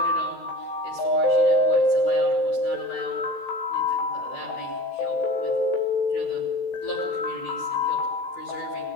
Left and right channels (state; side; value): late; right; 16 ms